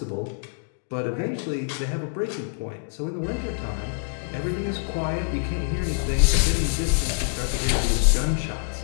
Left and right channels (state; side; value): silent; right; digital silence